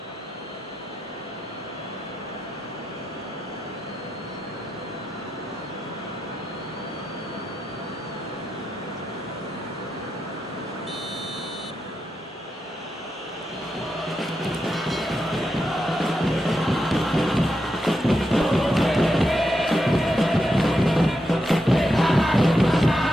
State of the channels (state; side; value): normal; both; correlation 0.86